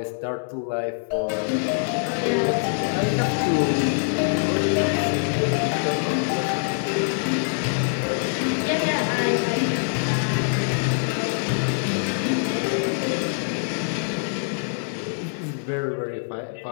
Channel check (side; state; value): right; silent; digital silence